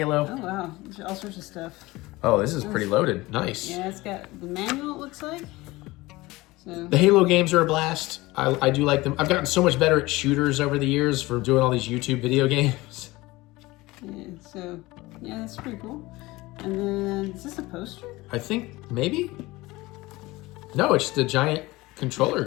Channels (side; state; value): right; quieter; 20.4 dB